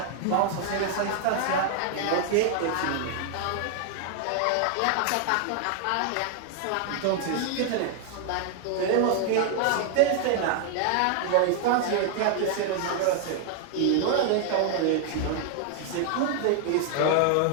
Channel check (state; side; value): different; both; correlation 0.00